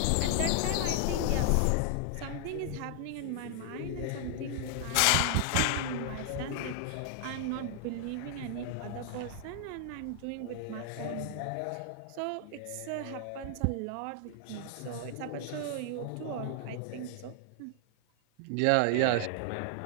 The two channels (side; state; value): both; different; correlation 0.00